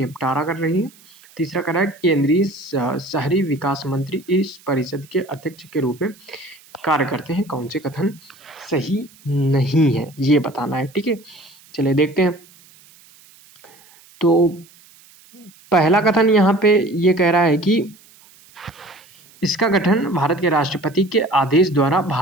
कर रही है। तीसरा कह रहा है केंद्रीय शहरी विकास मंत्री इस परिषद के अध्यक्ष के रूप में कार्य करते हैं। कौन से कथन सही नहीं है ये बताना है। ठीक है, चलिए देखते हैं। तो पहला कथन यहाँ पे ये कह रहा है कि इसका गठन भारत के राष्ट्रपति के आदेश द्वारा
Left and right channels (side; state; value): right; noise; hiss, 26 dB below the sound